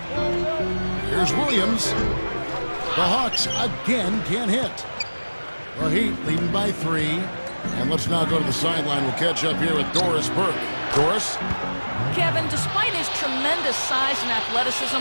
Here's Williams. The Hawks again can't hit. The Heat leading by 3. And let's now go to the sideline. We'll catch up here with Doris Burke. Doris? Kevin, despite his tremendous size and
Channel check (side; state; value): both; inverted; correlation -1.00